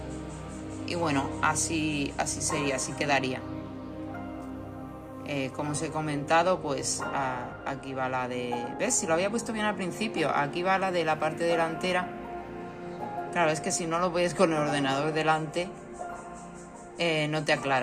Y bueno, así sería, así quedaría. Como os he comentado, pues aquí va la de... ¿Ves? Si lo había puesto bien al principio. Aquí va la de la parte delantera. Claro, es que si no lo ves con el ordenador delante, no te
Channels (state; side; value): identical; both; correlation 1.00